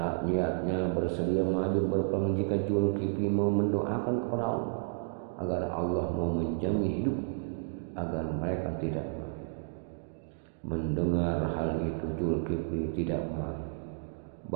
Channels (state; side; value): silent; left; digital silence